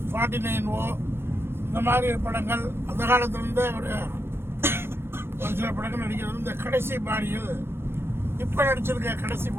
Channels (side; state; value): left; late; 0.12 ms